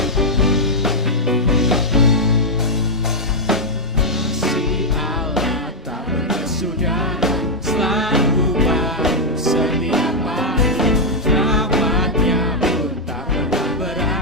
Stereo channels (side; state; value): both; normal; correlation -0.03